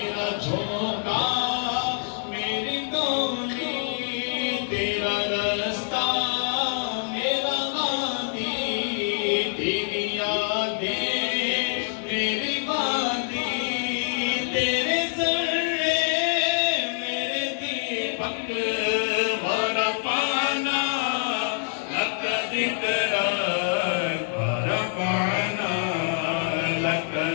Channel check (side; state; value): right; silent; digital silence